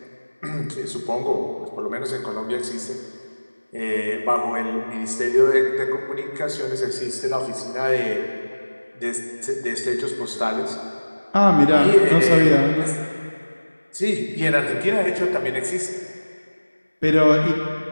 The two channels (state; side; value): inverted; both; correlation -1.00